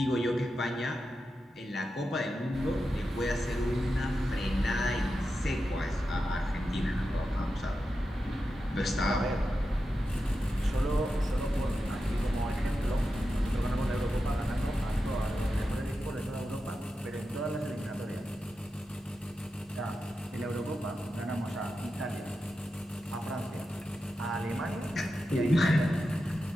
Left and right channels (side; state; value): both; normal; correlation 0.90